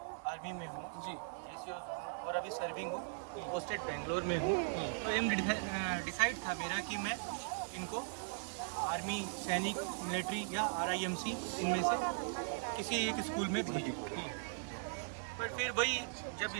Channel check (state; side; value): silent; left; digital silence